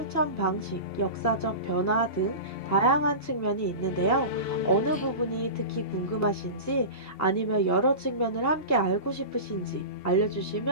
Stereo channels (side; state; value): right; late; 2.7 ms